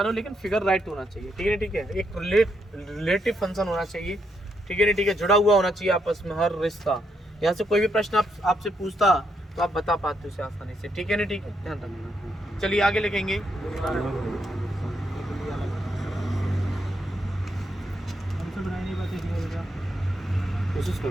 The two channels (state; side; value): normal; both; correlation 0.78